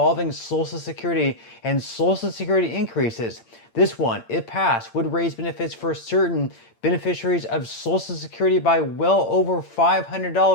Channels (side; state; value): right; late; 8.7 ms